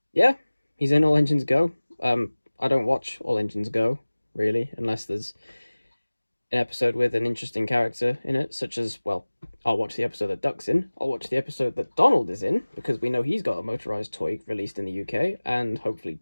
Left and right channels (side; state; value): both; inverted; correlation -1.00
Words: he's in All Engines Go. I don't watch All Engines Go, really, unless there's an episode with an interesting character in it, such as, well, I'll watch the episode that Duck's in, I'll watch the episode that Donald is in, because we know he's got a motorized toy released in the UK, and hopefully